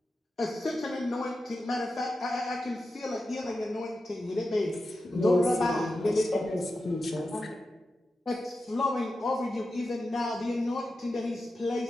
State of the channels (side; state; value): both; normal; correlation 0.91